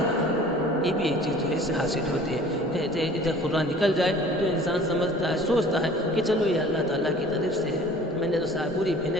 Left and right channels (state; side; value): normal; both; correlation 0.48